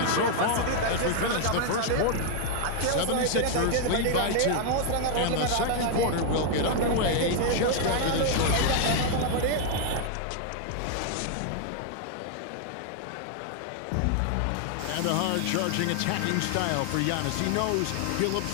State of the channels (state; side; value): different; both; correlation 0.00